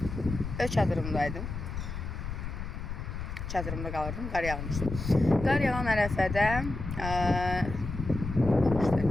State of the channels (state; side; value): noise; left; rumble, 6 dB below the sound